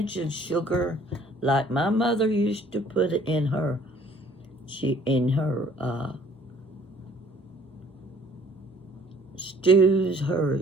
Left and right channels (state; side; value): normal; both; correlation 0.57